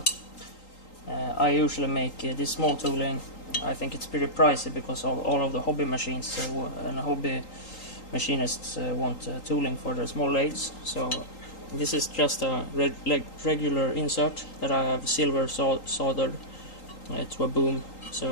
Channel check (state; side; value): late; right; 3.8 ms